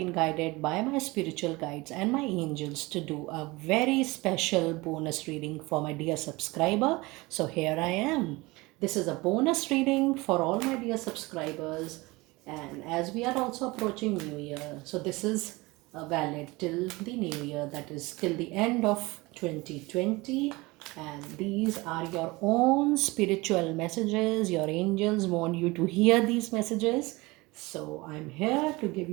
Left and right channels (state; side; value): quieter; left; 22.8 dB